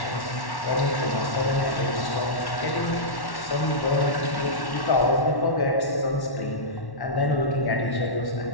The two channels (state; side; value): late; right; 1.1 ms